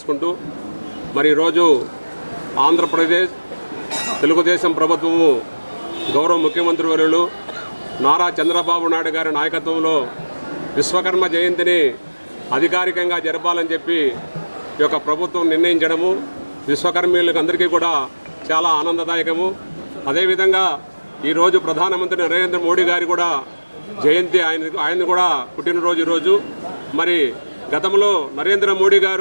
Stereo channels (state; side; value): inverted; both; correlation -1.00